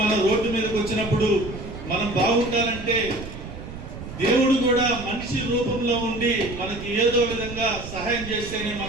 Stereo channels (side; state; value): right; noise; rumble, 11 dB below the sound